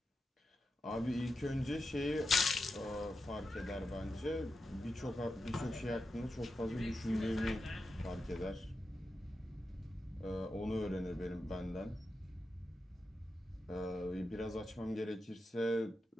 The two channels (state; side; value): normal; both; correlation 0.89